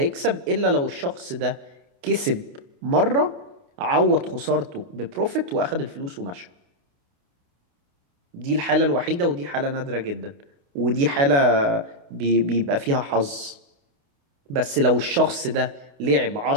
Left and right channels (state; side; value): late; left; 28 ms